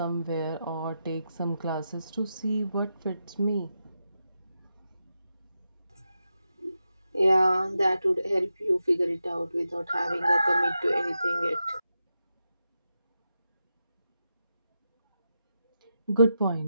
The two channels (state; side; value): inverted; both; correlation -0.88